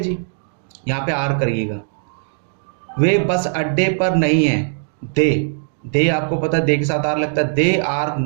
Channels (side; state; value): left; silent; digital silence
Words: जी, यहाँ पे आर करिएगा। वे बस अड्डे पर नहीं है, दे आपको पता है दे के साथ आर लगता है, दे आर